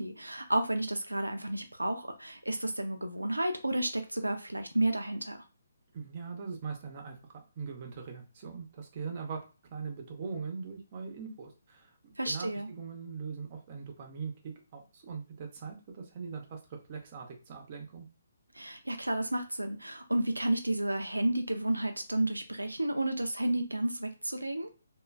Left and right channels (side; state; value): both; inverted; correlation -0.94